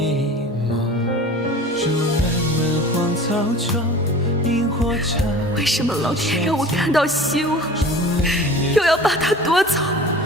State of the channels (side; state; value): both; normal; correlation 0.40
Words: 为什么老天让我看到希望，又要把它夺走？